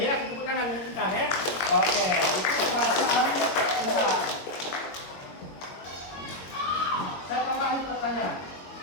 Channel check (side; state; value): right; late; 22 ms